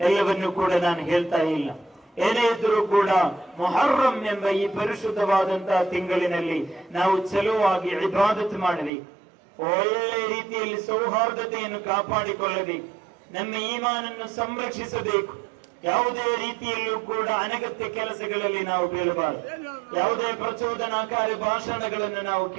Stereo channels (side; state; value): left; drops out; at 8.9 s